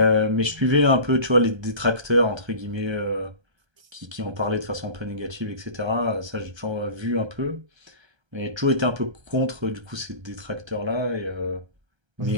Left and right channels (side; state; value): left; late; 1.3 ms